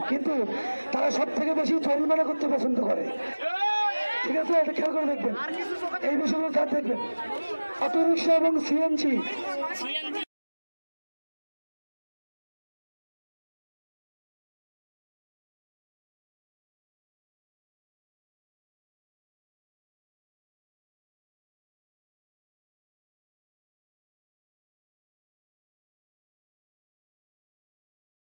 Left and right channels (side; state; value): both; inverted; correlation -1.00